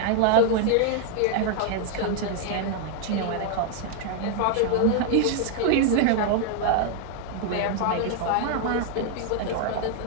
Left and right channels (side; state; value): both; different; correlation 0.00